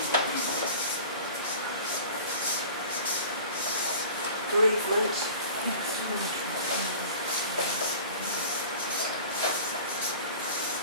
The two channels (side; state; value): both; inverted; correlation -0.41